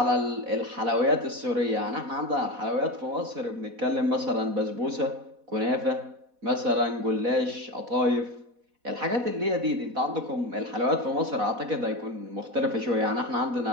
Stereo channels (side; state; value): left; late; 4.1 ms